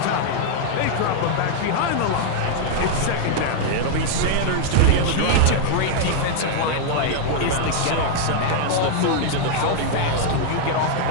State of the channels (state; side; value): different; both; correlation -0.01